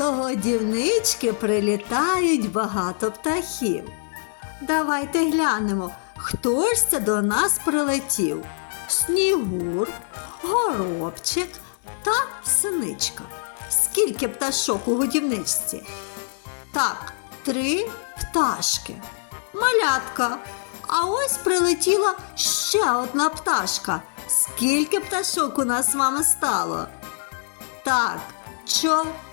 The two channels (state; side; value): silent; right; 63 dB below the other